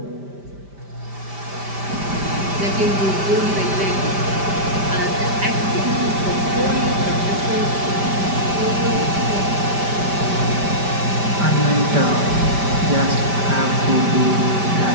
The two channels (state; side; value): late; left; 5.1 ms